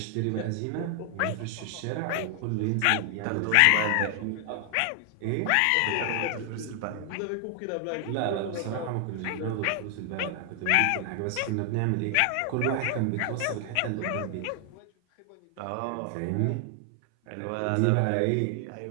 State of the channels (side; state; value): both; different; correlation 0.00